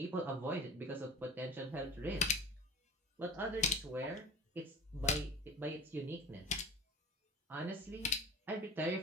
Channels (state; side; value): normal; both; correlation 0.36